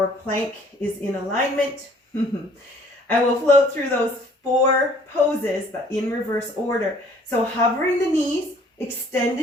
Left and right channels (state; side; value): normal; both; correlation 0.57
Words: plank is in alignment. And we'll float through those 4 poses, but in reverse order. So hovering the knees,